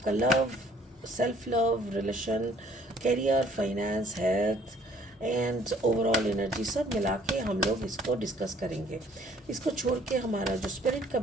love, self love, relation, career, finance, health and overall energy सब मिला के हम लोग इसको डिस्कस करेंगे। इसको छोड़ के हमारा जो स्पिरिट का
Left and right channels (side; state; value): both; normal; correlation 0.59